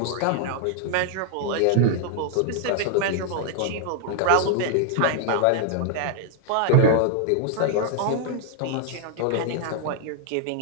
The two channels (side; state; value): both; different; correlation 0.00